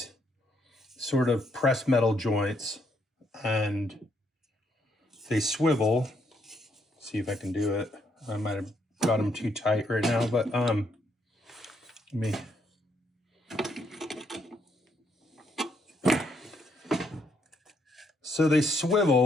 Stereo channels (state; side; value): normal; both; correlation 0.74